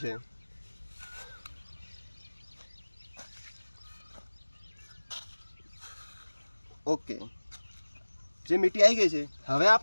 છે. ઓકે, જે મીઠી આવી ગઈ છે. હવે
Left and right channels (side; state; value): both; inverted; correlation -1.00